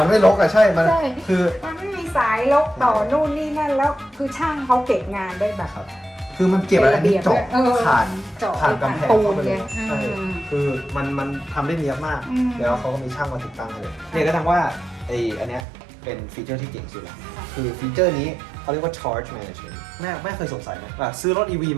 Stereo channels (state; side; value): drops out; left; at 15.7 s